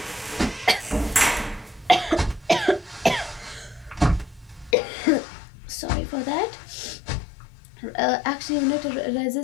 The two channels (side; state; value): right; drops out; at 4.8 s